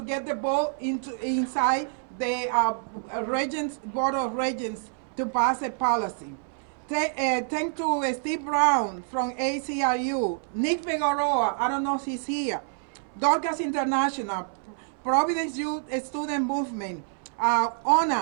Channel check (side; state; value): left; silent; 60 dB below the other